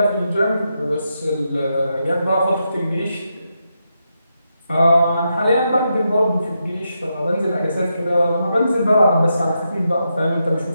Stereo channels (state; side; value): inverted; both; correlation -0.84